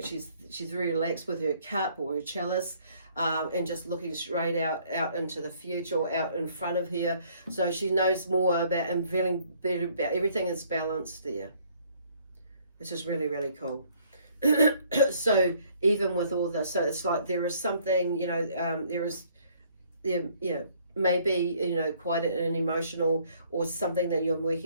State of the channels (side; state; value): both; inverted; correlation -0.62